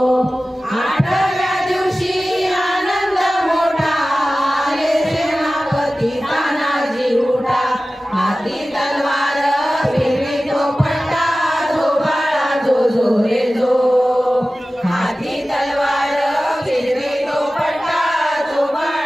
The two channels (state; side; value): normal; both; correlation 0.96